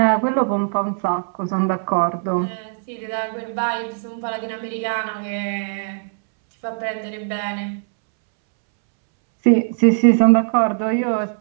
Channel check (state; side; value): silent; left; 65 dB below the other